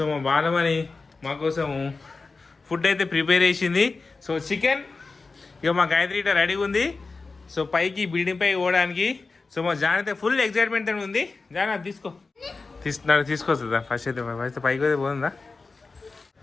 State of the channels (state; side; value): quieter; right; 4.0 dB